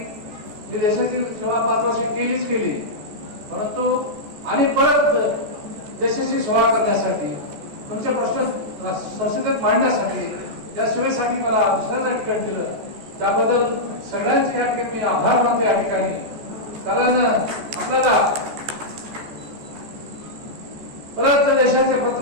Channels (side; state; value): left; late; 14 ms